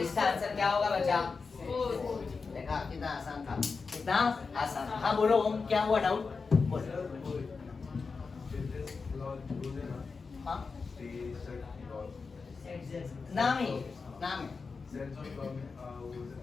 आंसर क्या होगा बच्चा, देखा कितना आसान था, कितना आसान। हाँ बोलो ओम, क्या हुआ डाउट, बोलो। हाँ नाम है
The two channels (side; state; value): right; quieter; 4.7 dB